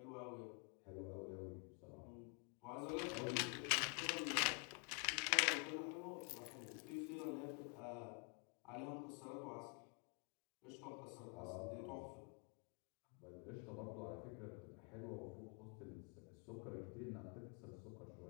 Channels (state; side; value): quieter; right; 37.3 dB